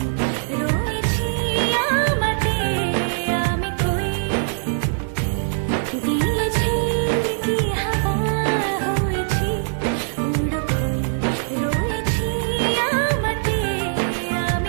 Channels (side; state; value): left; silent; digital silence